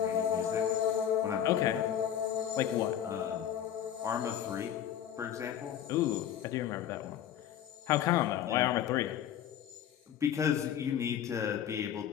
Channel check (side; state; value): right; quieter; 10.1 dB